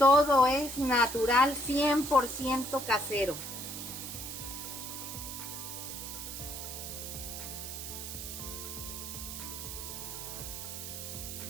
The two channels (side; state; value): right; noise; hiss, 7 dB below the sound